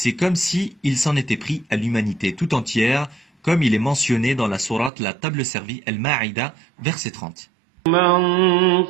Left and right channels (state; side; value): drops out; left; at 4.9 s